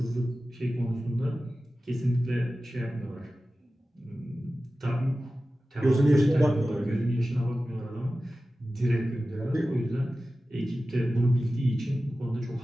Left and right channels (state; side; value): normal; both; correlation 0.95